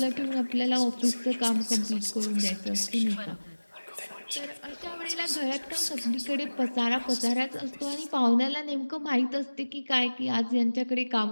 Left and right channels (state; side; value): inverted; both; correlation -1.00